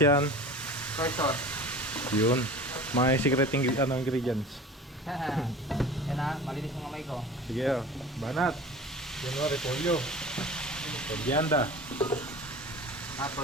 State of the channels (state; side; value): normal; both; correlation 0.38